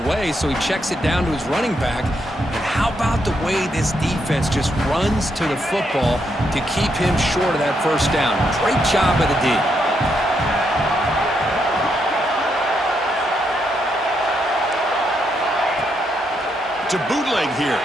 so he checks it down to his running back. And how about the way this defense just runs to the football to keep him short of that first down? Great job by the D. To bootleg here.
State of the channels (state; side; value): normal; both; correlation 0.78